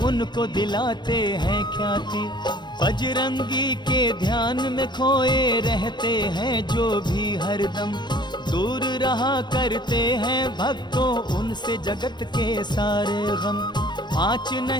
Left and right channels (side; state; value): right; late; 0.22 ms